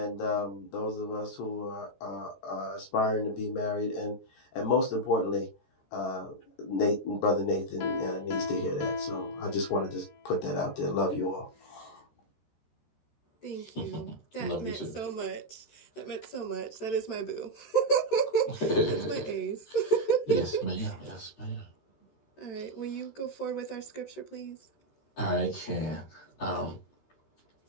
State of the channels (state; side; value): late; right; 13 ms